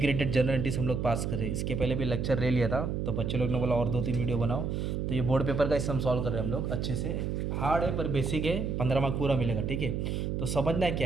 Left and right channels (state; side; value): noise; right; hum, 1 dB below the sound